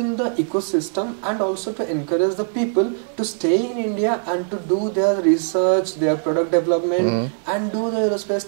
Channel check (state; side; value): silent; left; 65 dB below the other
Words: the ecosystem, and also to encourage the people to stay in India and to do their research, their product development, and do the aerospace